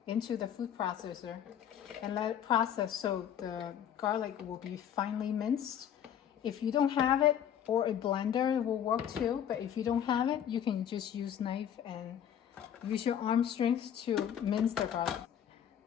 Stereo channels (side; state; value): right; quieter; 9.4 dB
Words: into the food processor and let it process so the garlic will be finely minced. If you don't have it, or a blender will work too, but if you don't have it, you can just use knife and use your arm strength to mince the garlic.